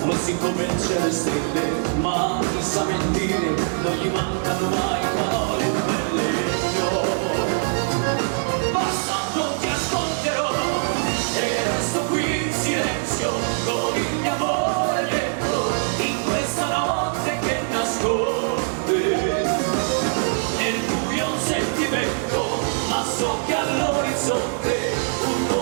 fossi come il cielo e stelle, ma chi sa mentire, non gli mancano mai parole belle. No, basta, non ti ascolterò e resto qui in silenzio con il mio amore dentro, in questa notte che nasconde nel buio un sentimento. Ma so che all'orizzonte un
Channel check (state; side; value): silent; left; 64 dB below the other